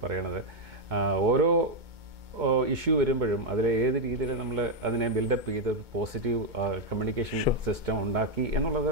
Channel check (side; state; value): left; late; 2.2 ms